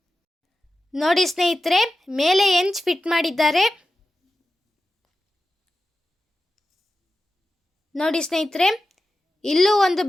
ನೋಡಿ ಸ್ನೇಹಿತರೆ, ಮೇಲೆ ಹೆಂಚ್ ಫಿಟ್ ಮಾಡಿದ್ದಾರೆ. ನೋಡಿ ಸ್ನೇಹಿತರೆ, ಇಲ್ಲೂ ಒಂದು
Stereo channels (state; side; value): normal; both; correlation 0.93